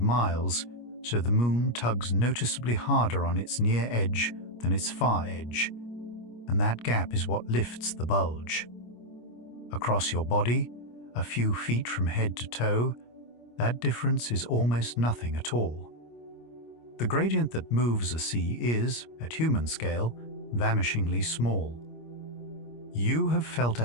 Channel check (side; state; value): right; late; 25 ms